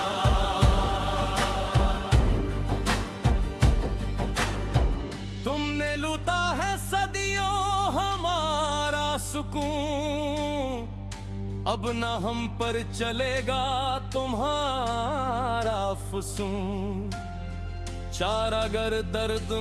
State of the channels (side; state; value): both; identical; correlation 1.00